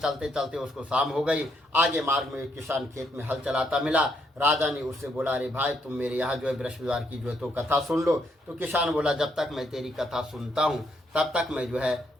चलते उसको शाम हो गई। आगे मार्ग में एक किसान खेत में हल चलाता मिला। राजा ने उससे बोला अरे भाई, तुम मेरे यहाँ जो है बृहस्पतिवार की जो है तो कथा सुन लो। तो किसान बोला जब तक मैं तेरी कथा सुनता हूँ तब तक मैं जो है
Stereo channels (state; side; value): normal; both; correlation 0.74